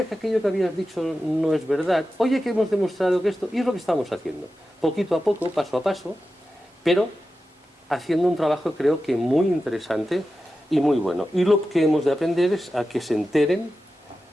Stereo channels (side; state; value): both; normal; correlation 0.92